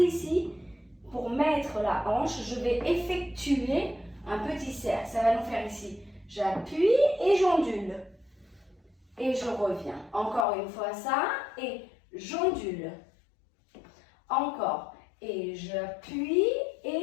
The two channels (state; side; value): drops out; right; at 10.5 s